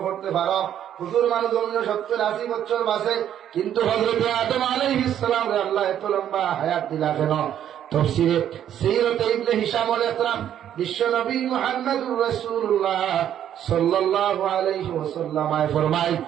করতে পারো, হুজুর মানুষ জমিন 70-80 বছর বাঁচে, কিন্তু হযরতে আদম আলাইহিস সালাম রে আল্লাহ এত লম্বা হায়াত দিলা কেন? তাফসীরে সিরাতে ইবনে হিশামুল ইকরাম বিশ্ব নবী মুহাম্মদুর রাসূলুল্লাহ সাল্লাল্লাহু আলাইহি ওয়াসাল্লাম ফরমায়,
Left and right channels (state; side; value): quieter; left; 10.3 dB